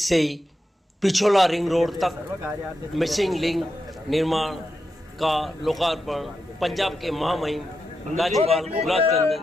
Pichola ring road तक मिसिंग लिंक निर्माण का लोकार्पण पंजाब के महामहिम राज्यपाल गुलाब चंद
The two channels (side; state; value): both; normal; correlation 0.87